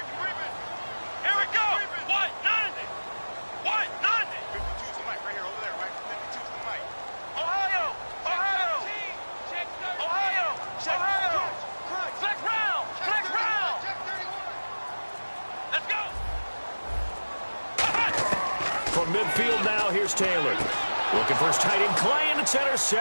From midfield now, here's Taylor. Looking for his tight end, Clay, and it's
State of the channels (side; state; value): both; inverted; correlation -1.00